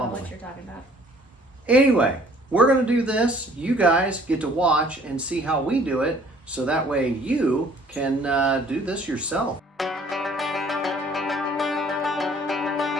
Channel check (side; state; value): both; normal; correlation 0.56